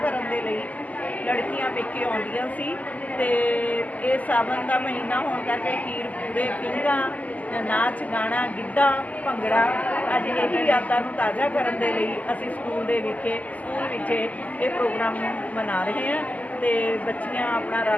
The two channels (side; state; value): right; late; 0.076 ms